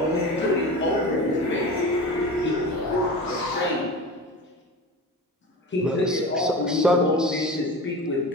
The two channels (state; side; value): normal; both; correlation 0.30